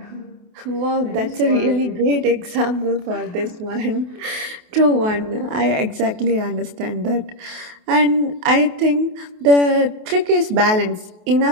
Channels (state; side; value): late; left; 28 ms